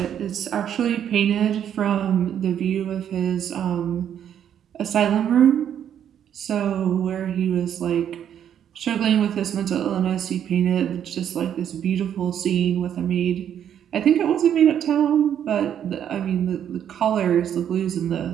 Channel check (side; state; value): left; quieter; 9.4 dB